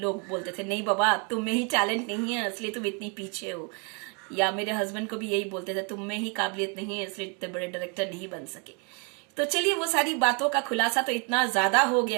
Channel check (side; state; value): left; quieter; 35.2 dB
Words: बोलते थे नहीं बाबा तुम में ही टैलेंट नहीं है इसलिए तुम इतनी पीछे हो, या मेरे हस्बैंड को भी यही बोलते थे तुम में ही काबिलियत नहीं है इसलिए इतने बड़े डायरेक्टर नहीं बन सके। तो चलिए वो सारी बातों का खुलासा तो इतना ज्यादा हो